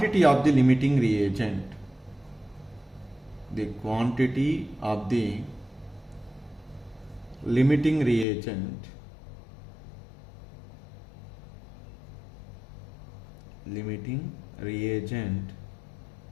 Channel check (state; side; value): drops out; right; at 8.2 s